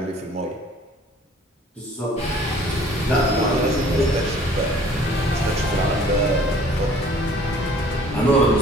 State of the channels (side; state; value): both; normal; correlation 0.53